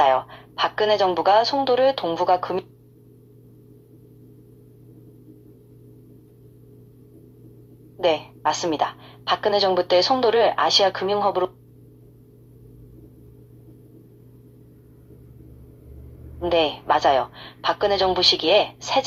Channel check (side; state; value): both; identical; correlation 1.00